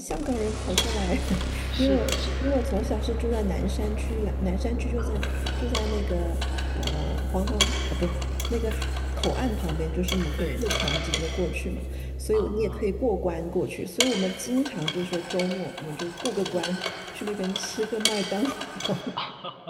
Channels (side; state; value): both; identical; correlation 1.00